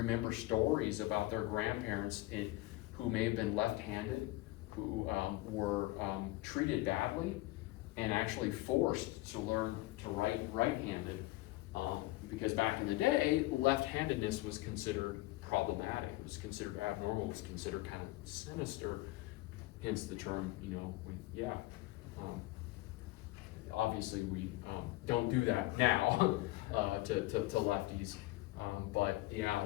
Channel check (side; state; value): right; quieter; 19.3 dB